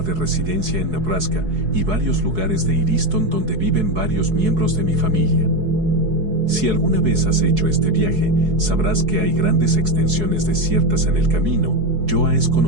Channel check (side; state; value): left; late; 4.7 ms